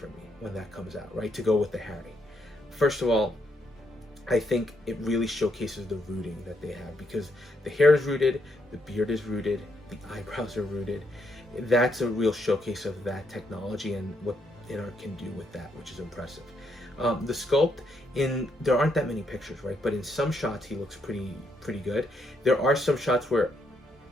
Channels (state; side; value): normal; both; correlation 0.76